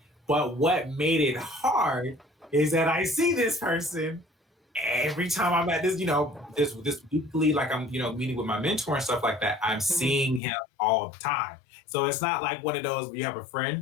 But what made it hard is that I see this person every time I'm at this, this weekly, like I'm, meeting with my mentor and stuff like that. I'm seeing him all the time. So it's not like one of those where you have a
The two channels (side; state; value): right; drops out; at 10.4 s